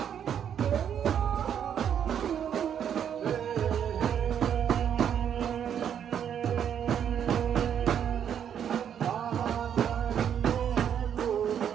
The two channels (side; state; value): left; quieter; 8.8 dB